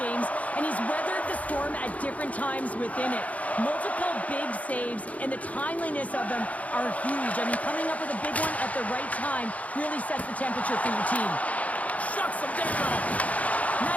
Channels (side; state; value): right; late; 0.069 ms